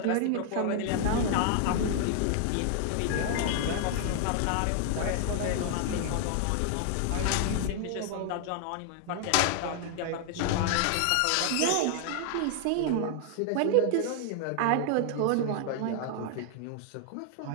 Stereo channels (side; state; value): both; different; correlation 0.00